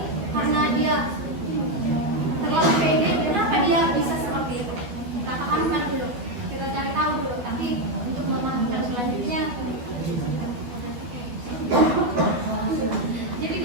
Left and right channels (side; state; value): left; late; 12 ms